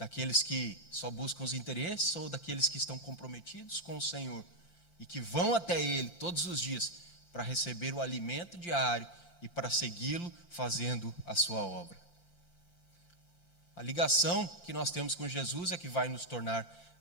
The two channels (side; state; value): right; late; 5.8 ms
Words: que só buscam os interesses ou daqueles que estão comprometidos com o Senhor e que vão até Ele todos os dias para receber o alimento diário e para segui-lo fazendo a sua obra? A ligação que nós temos com Jesus é que vai nos tornar